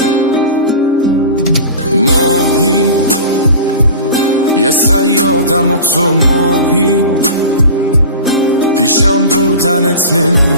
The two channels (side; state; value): both; inverted; correlation -0.35